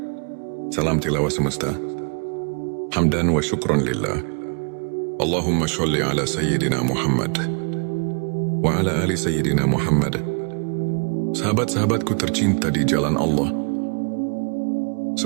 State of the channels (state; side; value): quieter; left; 38.0 dB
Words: Salam tilawah semesta. Hamdan wa syukran lillah. Allahumma sholli ala Sayyidina Muhammad wa ala ali Sayyidina Muhammad. Sahabat-sahabatku tercinta di jalan Allah,